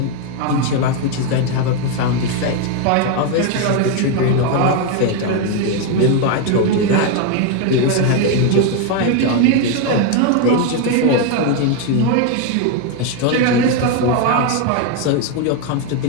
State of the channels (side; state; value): both; different; correlation 0.01